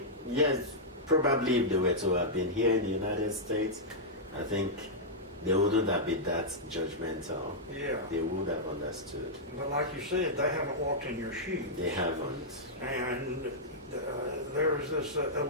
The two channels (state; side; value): normal; both; correlation -0.08